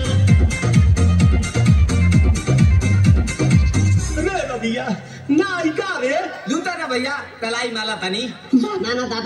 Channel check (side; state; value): both; identical; correlation 1.00